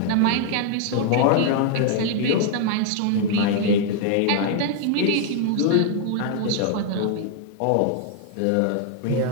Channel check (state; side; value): different; both; correlation 0.00